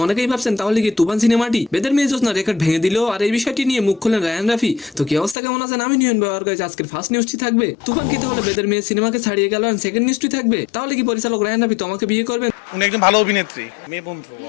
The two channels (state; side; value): drops out; right; at 5.4 s